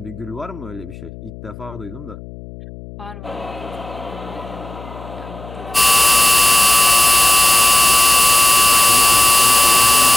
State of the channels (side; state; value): left; noise; hum, 17 dB below the sound